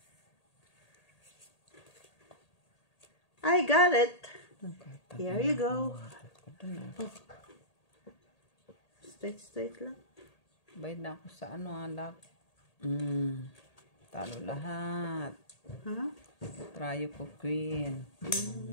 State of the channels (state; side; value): late; right; 1.8 ms